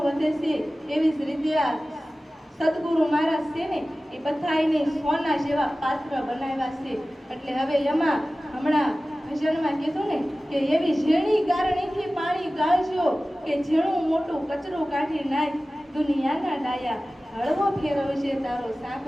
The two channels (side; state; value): both; normal; correlation 0.96